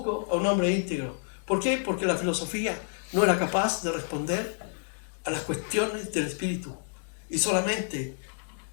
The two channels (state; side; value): silent; right; digital silence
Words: a un hombre íntegro. ¿Por qué? Porque la filosofía no era capaz de responder a las cuestiones del Espíritu, y solamente